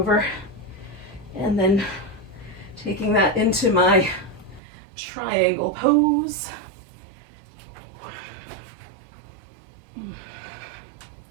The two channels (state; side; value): drops out; left; at 4.6 s